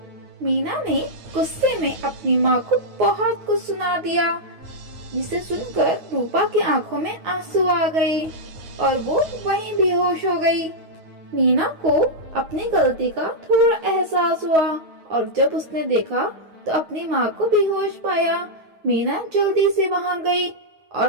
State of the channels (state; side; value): late; left; 9.5 ms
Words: मीना ने गुस्से में अपनी माँ को बहुत कुछ सुना दिया, जिसे सुनकर रूपा की आंखों में आंसू आ गए और वो वहीं बेहोश हो गई। मीना को अपनी गलती का थोड़ा एहसास हुआ और जब उसने देखा तो अपनी माँ को बेहोश पाया। मीना जल्दी से वहाँ गई